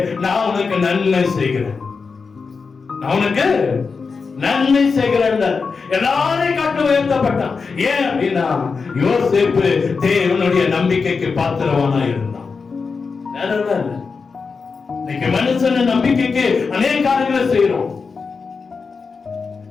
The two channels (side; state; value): right; quieter; 4.9 dB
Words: நான் உனக்கு நன்மை செய்கிறேன், நான் உனக்கு நன்மை செய்கிறேன். எல்லாரையும் காட்டு உயர்த்தப்பட்டான். ஏன் அப்படின்னா யோசேப்பு தேவனுடைய நம்பிக்கைக்கு பாத்திரவானா இருந்தான். இன்னைக்கு மனுஷன் நம்பிக்கைக்கு அநேக காரியங்களை செய்யறோம்.